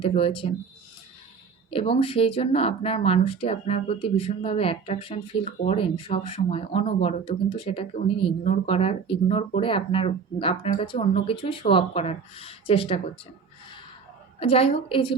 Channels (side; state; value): left; quieter; 5.8 dB